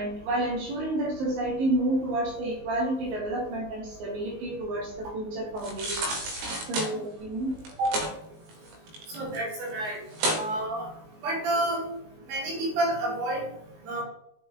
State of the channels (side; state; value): left; late; 19 ms